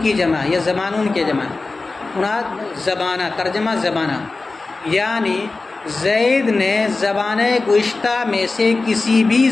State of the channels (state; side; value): quieter; right; 3.6 dB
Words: کی جمع، یہ زمانون کے جمع، مراد زبانہ، ترجمہ زبانہ، یعنی زید نے زبانِ گزشتہ میں سے کسی بھی